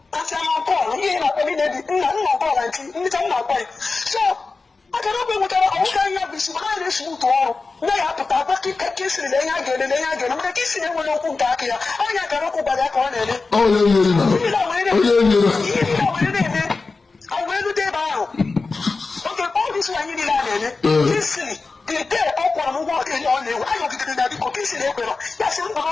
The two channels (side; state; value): right; quieter; 4.0 dB